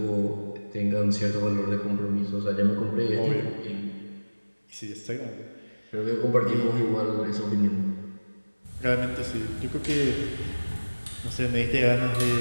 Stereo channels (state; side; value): inverted; both; correlation -1.00